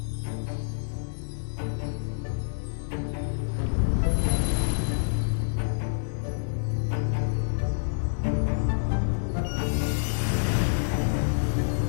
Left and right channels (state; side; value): silent; right; digital silence